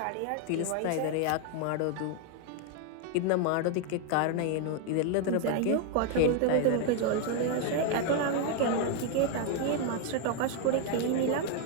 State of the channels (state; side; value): different; both; correlation 0.00